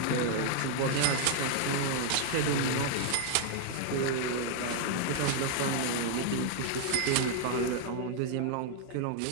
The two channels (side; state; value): both; different; correlation 0.00